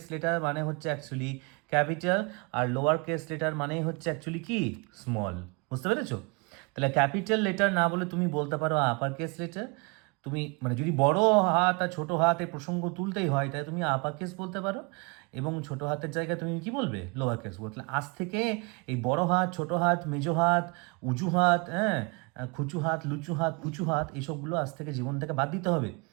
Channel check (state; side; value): quieter; left; 30.7 dB